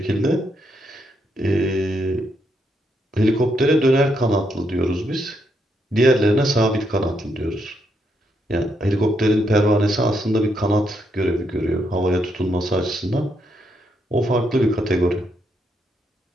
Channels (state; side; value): normal; both; correlation 0.78